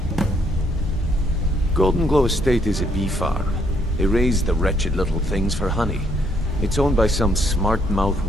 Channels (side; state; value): both; normal; correlation 0.70